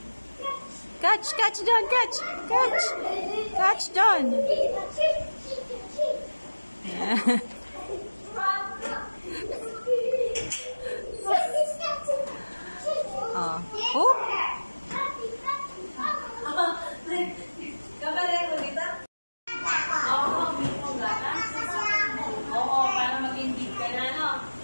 Catch John, catch. Catch John. Yeah. Oh.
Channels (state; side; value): inverted; both; correlation -1.00